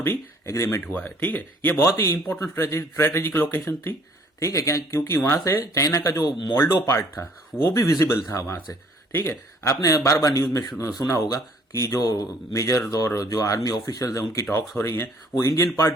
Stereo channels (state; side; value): normal; both; correlation 0.58